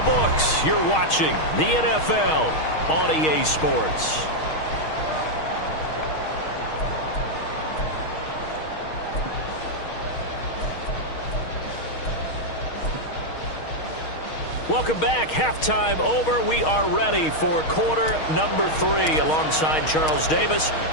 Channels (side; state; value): right; late; 6.4 ms